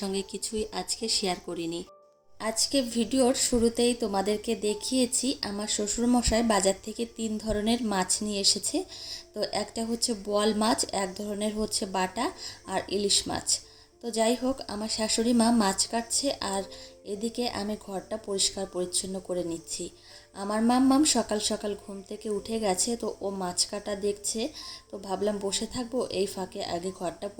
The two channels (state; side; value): identical; both; correlation 1.00